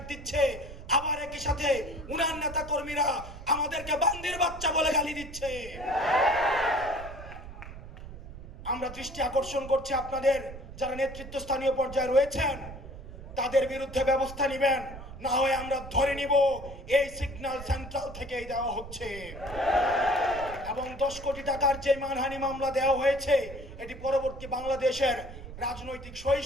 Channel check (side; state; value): right; noise; rumble, 13 dB below the sound